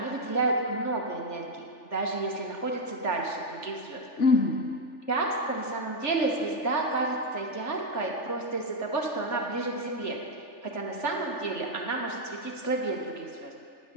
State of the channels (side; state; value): right; late; 3.4 ms